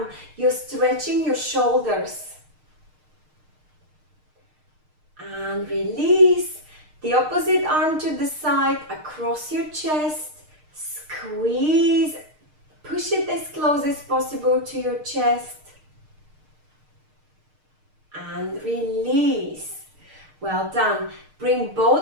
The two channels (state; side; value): late; left; 6.5 ms